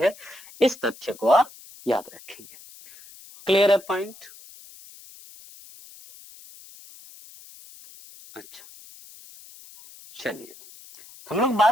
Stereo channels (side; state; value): left; noise; hiss, 21 dB below the sound